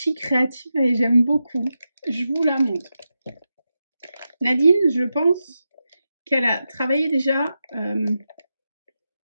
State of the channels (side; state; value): both; inverted; correlation -0.89